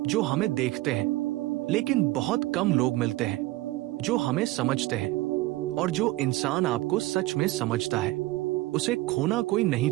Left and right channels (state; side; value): quieter; left; 18.7 dB